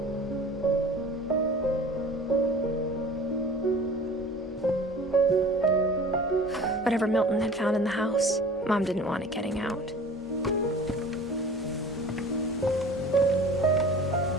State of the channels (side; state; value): both; normal; correlation 0.43